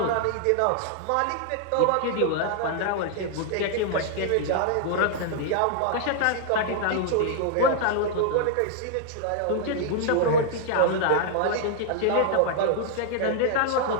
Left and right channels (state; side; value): different; both; correlation -0.01